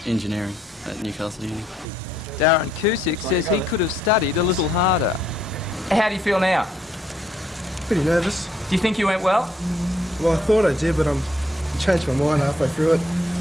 Engineering at Newcastle Uni. Darren Cusick says he could have studied a little harder. How do you feel now? Pretty nervous. Do you think you went well? Well, I thought I did, but I changed my mind halfway through it,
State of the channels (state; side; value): normal; both; correlation 0.71